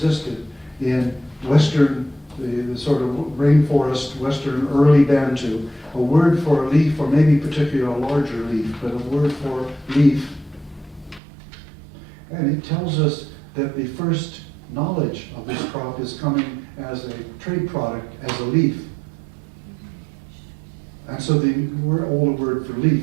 in Western, the sort of rainforest, Western early Bantu, a word for a leaf, or maybe particularly a larger leaf, but a word for leaf. And it tells us that the first knowledge of this crop is coming as a trade product, as a leaf. And so the older word for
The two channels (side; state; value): left; drops out; at 11.2 s